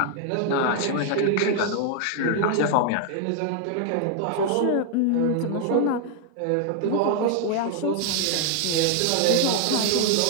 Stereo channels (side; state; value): both; different; correlation 0.00